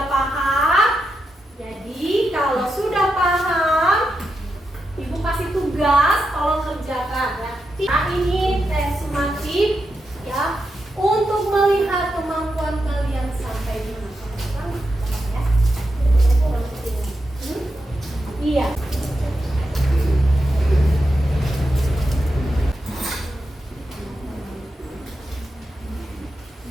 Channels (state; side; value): normal; both; correlation 0.86